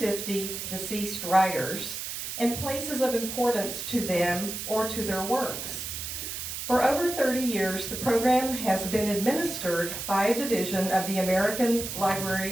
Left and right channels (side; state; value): right; noise; hiss, 6 dB below the sound